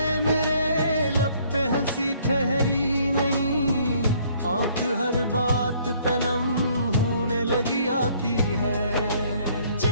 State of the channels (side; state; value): both; inverted; correlation -0.61